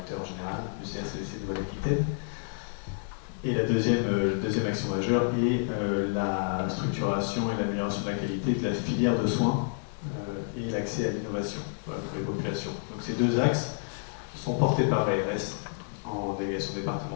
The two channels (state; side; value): silent; right; digital silence